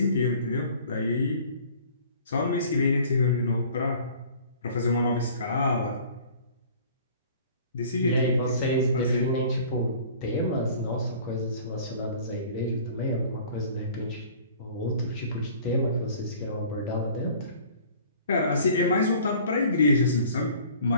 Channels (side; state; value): both; inverted; correlation -0.49